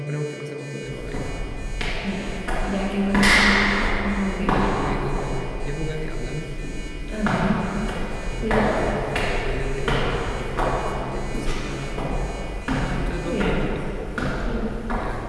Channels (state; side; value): identical; both; correlation 1.00